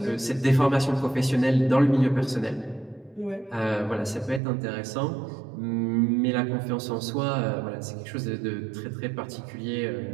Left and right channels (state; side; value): drops out; left; at 4.4 s